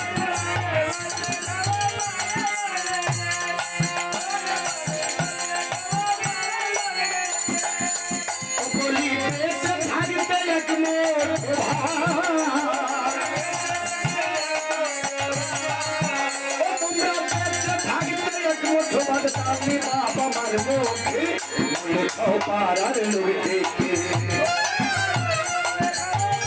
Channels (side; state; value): both; identical; correlation 1.00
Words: বাবা মার মুখে মরলে খাও পাড়ার লোকে।